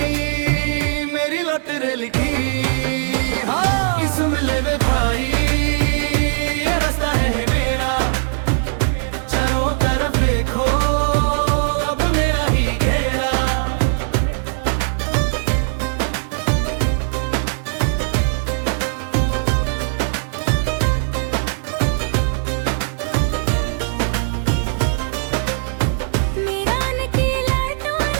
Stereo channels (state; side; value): silent; left; 60 dB below the other